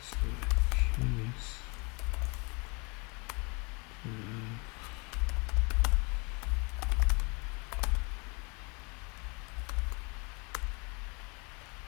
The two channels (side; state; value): right; quieter; 31.0 dB